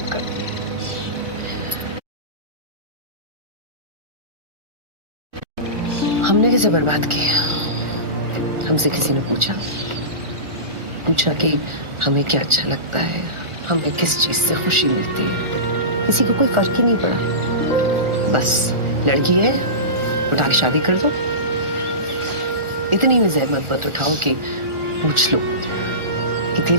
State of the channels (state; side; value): late; left; 1.4 ms